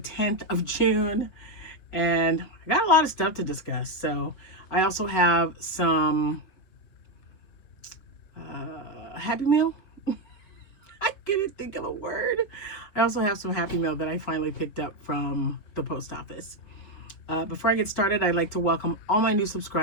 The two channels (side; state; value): right; late; 5.0 ms